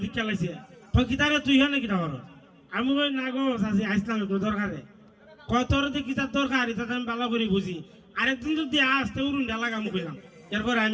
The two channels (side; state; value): both; identical; correlation 1.00